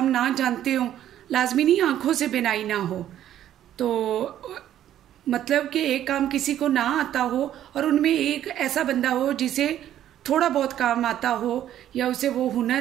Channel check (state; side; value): quieter; left; 11.5 dB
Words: ना जानते हों, लाजमी नहीं आंखों से बिनाई ना हो, तो मतलब कि एक काम किसी को ना आता हो और उनमें एक ऐसा बंदा हो जिसे थोड़ा बहुत काम आता हो या उसे वो